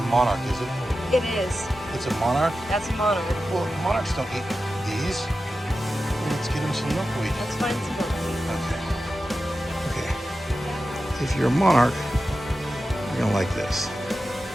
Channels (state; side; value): normal; both; correlation 0.92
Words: monarch, is it? It is. It's a monarch? That's a monarch. Well, monarchs don't eat these. Let's get him some milkweed. Let's find some milkweed. Okay. Okay. If you're a monarch, you're going to like this.